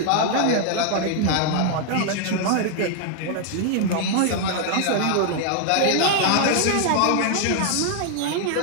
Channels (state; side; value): different; both; correlation 0.00